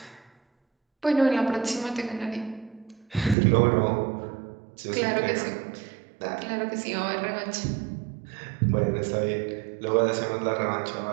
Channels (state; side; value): drops out; left; at 3.4 s